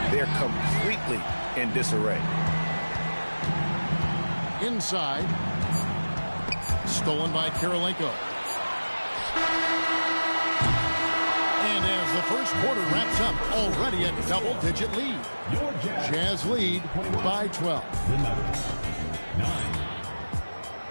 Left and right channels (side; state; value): both; inverted; correlation -1.00